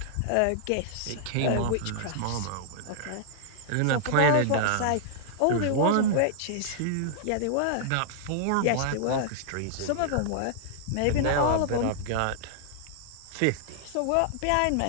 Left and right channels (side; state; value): both; different; correlation -0.01